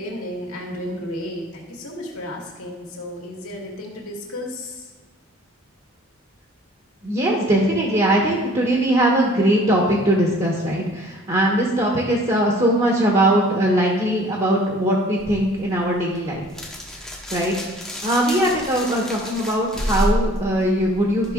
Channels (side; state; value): both; normal; correlation 0.53